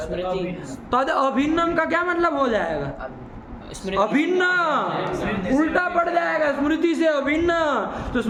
तद अभिन्नम का क्या मतलब हो जाएगा? स्मृति अभिन्न, उल्टा पड़ जाएगा। स्मृति से अभिन्न, तो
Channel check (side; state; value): both; identical; correlation 1.00